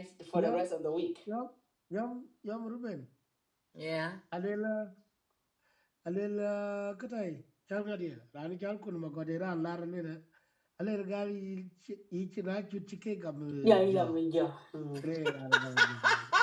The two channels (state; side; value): identical; both; correlation 1.00